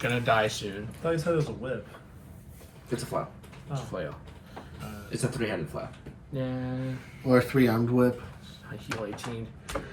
die soon. I thought you said it was a whip. It's a flail. Oh. Flail. It's a 3-handed flail. Yeah. Or a 3-armed whip. I heal 18. Well,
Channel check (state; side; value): identical; both; correlation 1.00